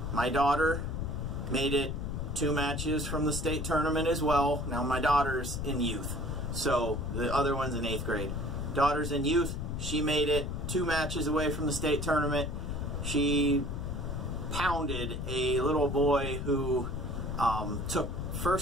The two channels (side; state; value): left; noise; rumble, 3 dB below the sound